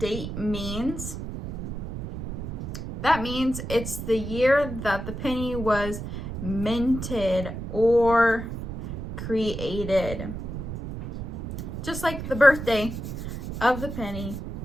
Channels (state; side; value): noise; right; rumble, 7 dB below the sound